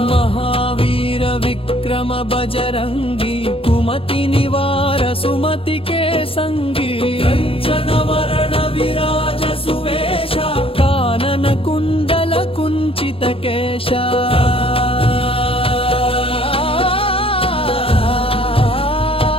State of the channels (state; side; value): late; right; 0.27 ms